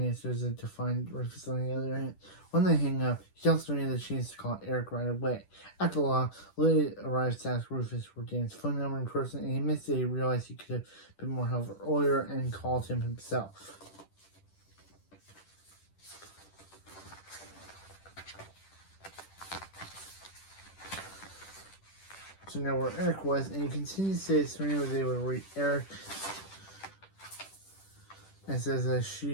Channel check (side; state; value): right; late; 10 ms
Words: it to find Rufus on the other end. When they hang up, he tells Serena that she needs to call Eric right away. At the law, Lily arrives to ask Rufus for Dan's phone number in person, and he admits that he realized he could have been more helpful earlier and called him himself. So now where Eric was, and he continues to say that Serena was able to reach Eric and says that